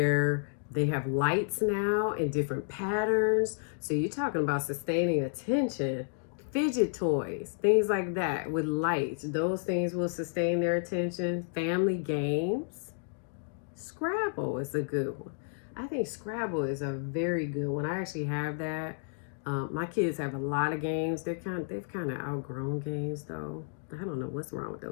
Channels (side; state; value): right; silent; digital silence